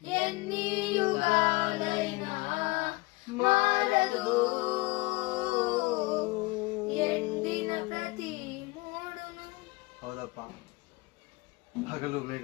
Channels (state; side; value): quieter; right; 23.8 dB